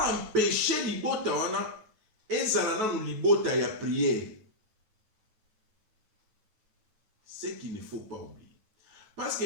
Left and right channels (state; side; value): late; left; 9.2 ms